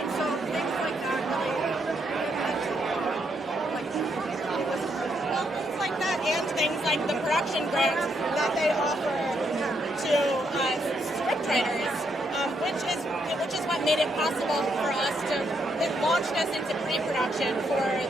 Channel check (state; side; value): normal; both; correlation 0.76